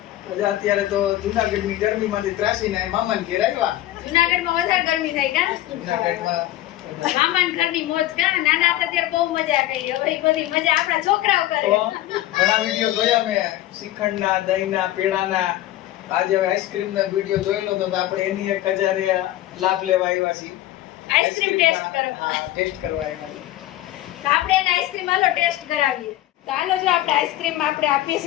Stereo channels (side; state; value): right; quieter; 14.8 dB